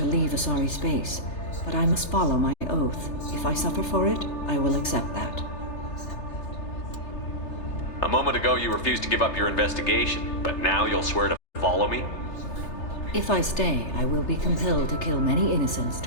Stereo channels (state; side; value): late; right; 3.3 ms